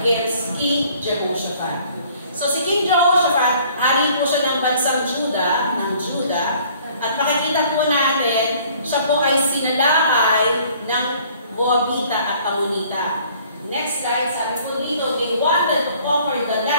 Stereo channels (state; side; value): inverted; both; correlation -0.56